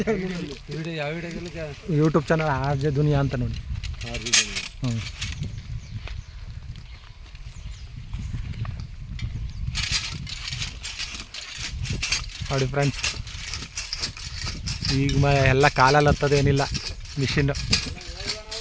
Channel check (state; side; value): identical; both; correlation 1.00